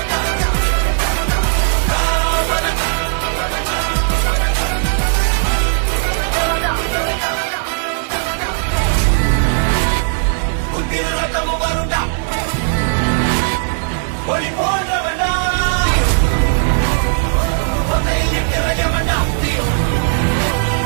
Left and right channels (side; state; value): left; silent; 59 dB below the other